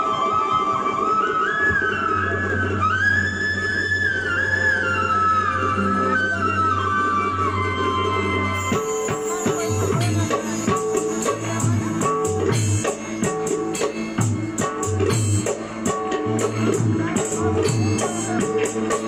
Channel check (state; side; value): identical; both; correlation 1.00